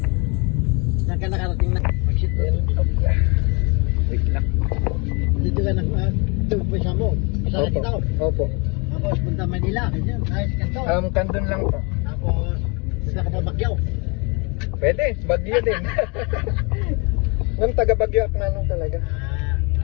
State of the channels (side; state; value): right; quieter; 31.0 dB